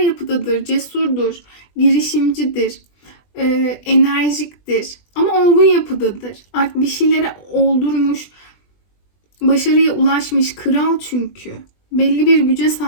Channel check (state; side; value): late; right; 20 ms